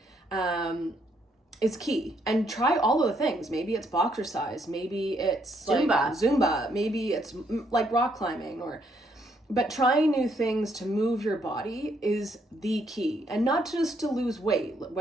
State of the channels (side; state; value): both; normal; correlation 0.72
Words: is key. And try all of the things. Maybe it's boxercise. Maybe it's Zumba. Maybe it's like rock climbing But trying new things to move your body is the key. And not just to lose weight.